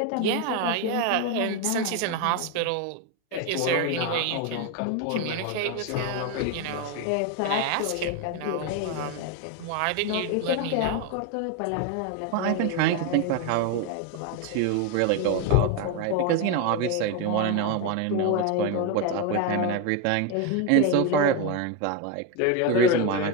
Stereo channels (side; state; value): both; different; correlation 0.02